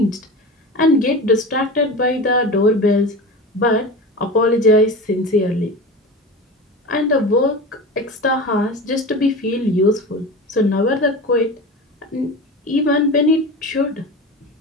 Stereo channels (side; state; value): both; normal; correlation 0.30